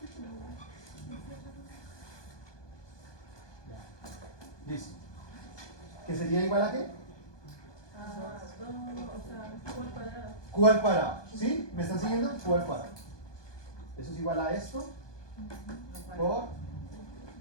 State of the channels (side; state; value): right; late; 1.2 ms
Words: Ya. Listo. ¿Que sería igual a qué? Q al cuadrado. ¿Sí? ¿Me están siguiendo? Q al cuadrado. Eso es igual a esto por